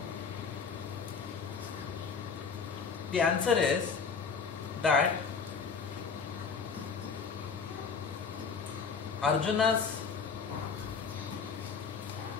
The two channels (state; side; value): quieter; right; 5.5 dB